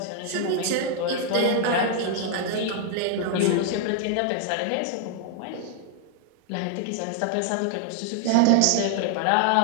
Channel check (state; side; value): different; both; correlation 0.00